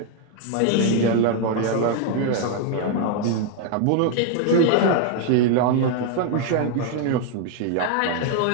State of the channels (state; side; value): different; both; correlation 0.00